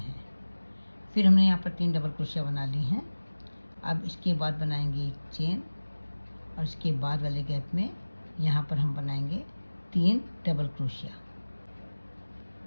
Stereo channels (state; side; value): inverted; both; correlation -1.00